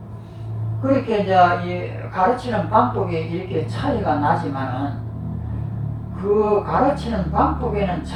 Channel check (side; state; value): both; identical; correlation 1.00